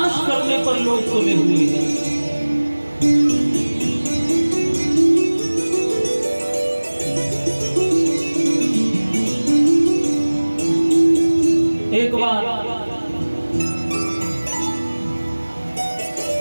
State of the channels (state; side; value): inverted; both; correlation -1.00